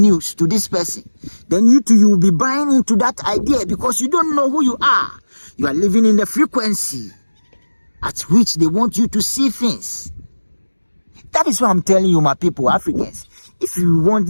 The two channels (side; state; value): both; inverted; correlation -1.00